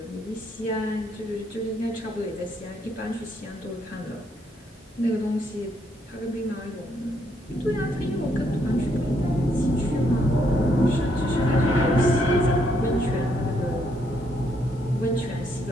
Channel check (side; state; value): both; normal; correlation 0.73